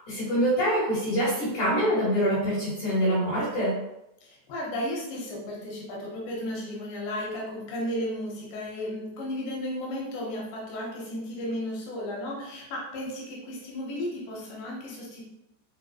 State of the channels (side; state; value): right; late; 14 ms